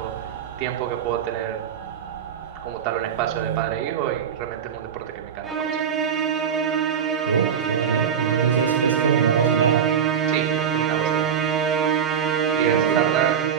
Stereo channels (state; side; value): quieter; left; 7.9 dB